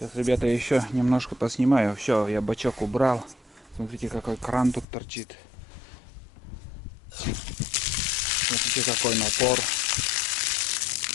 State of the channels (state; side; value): drops out; right; at 4.9 s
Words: ребята, еще немножко поснимаю. Все, я бачок убрал. Смотрите, какой кран тут торчит. Смотрите, какой напор.